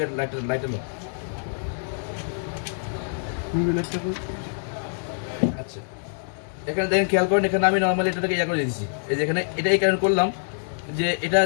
লাইটার আচ্ছা, এখানে দেখেন খেয়াল করেন, এখানে আমি নর্মালি এটাকে করে দিয়েছি। এই যে এখানে এটা এই কারণে করলাম যে এটা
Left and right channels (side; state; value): right; silent; 62 dB below the other